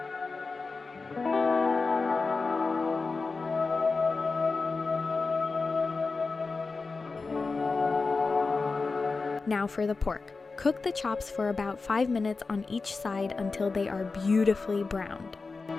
Now for the pork. Cook the chops for about 5 minutes on each side until they are beautifully browned.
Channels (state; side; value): quieter; right; 4.1 dB